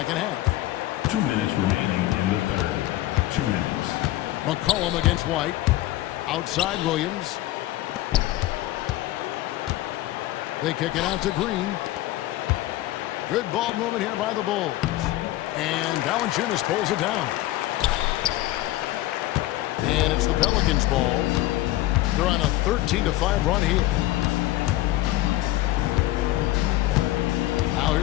half. 2 minutes remaining in the third. 2 minutes. McCollum against White. Outside Williams. They kick it out to Green. Good ball movement here by the Bulls. And Valanciunas pulls it down. And it's the Pelicans' ball. They're on a 13-5 run here. Now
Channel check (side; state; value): right; quieter; 16.3 dB